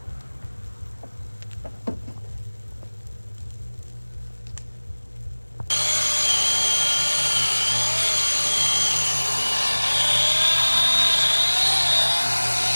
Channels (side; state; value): both; inverted; correlation -1.00